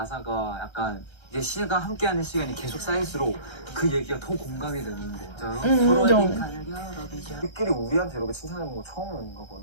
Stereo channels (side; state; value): right; late; 1.3 ms